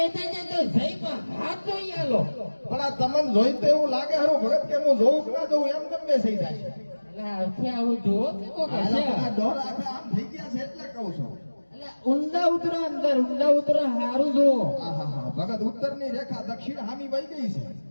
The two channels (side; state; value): both; inverted; correlation -1.00